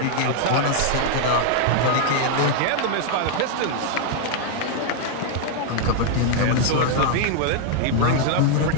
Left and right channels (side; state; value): both; different; correlation 0.00